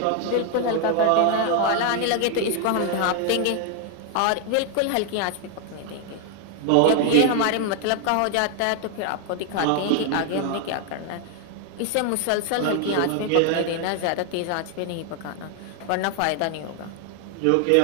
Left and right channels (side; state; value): both; different; correlation 0.00